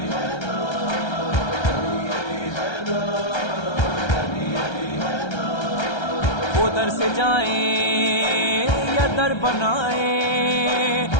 وہ در سے جائیں یا در بنائیں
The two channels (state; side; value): late; right; 1.3 ms